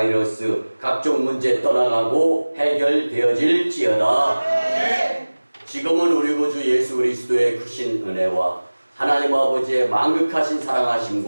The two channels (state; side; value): inverted; both; correlation -1.00